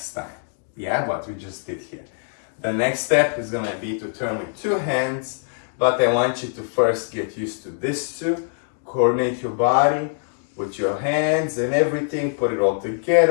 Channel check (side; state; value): right; silent; digital silence